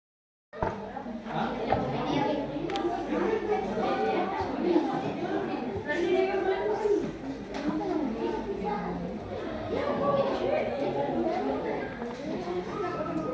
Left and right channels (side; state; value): both; identical; correlation 1.00